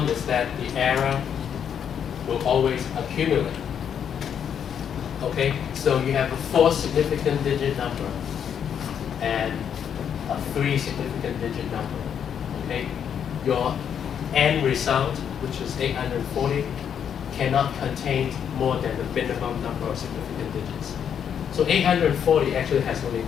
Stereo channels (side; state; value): right; quieter; 8.3 dB